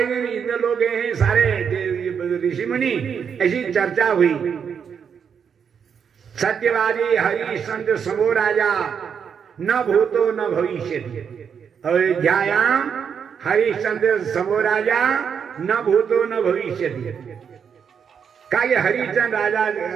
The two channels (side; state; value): left; quieter; 7.1 dB